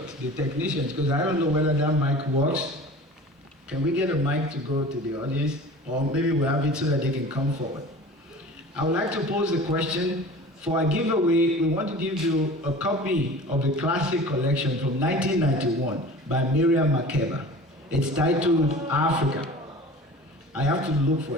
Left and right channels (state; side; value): normal; both; correlation 0.40